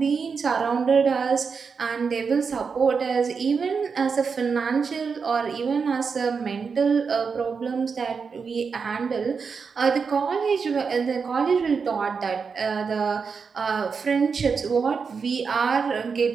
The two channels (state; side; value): quieter; left; 5.5 dB